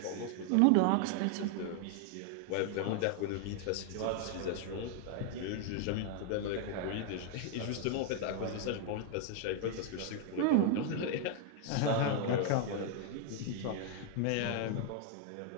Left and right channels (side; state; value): both; different; correlation 0.00